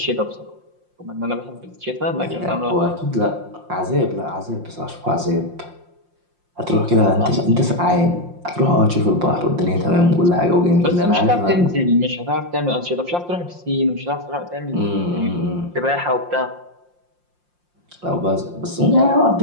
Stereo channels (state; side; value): late; left; 5.7 ms